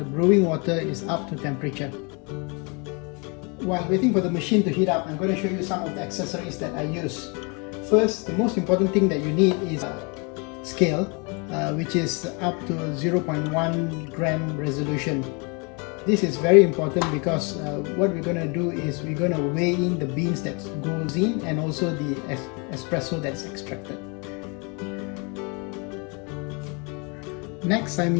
brewing water is up to temperature. While waiting for the machine to heat up, I'm going to show you some of the accessories that I use. First, the most important thing that you need is a scale, which is up to 0.1 gram resolution. This is very important because what we're going to do is we're going to weigh in the beans that goes in and also the espresso that's extracted. Next,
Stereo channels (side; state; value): right; quieter; 32.5 dB